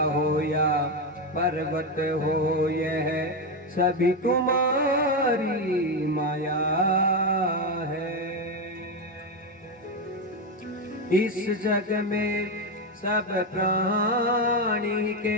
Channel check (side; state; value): both; normal; correlation 0.10